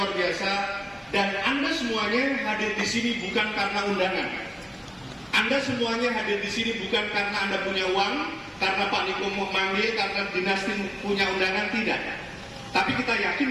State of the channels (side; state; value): both; identical; correlation 1.00